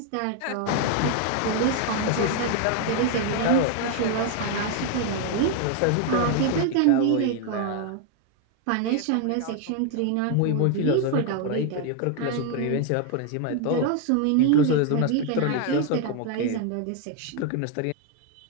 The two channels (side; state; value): both; different; correlation 0.01